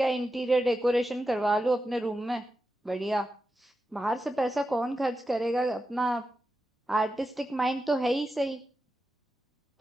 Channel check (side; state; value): both; normal; correlation 0.90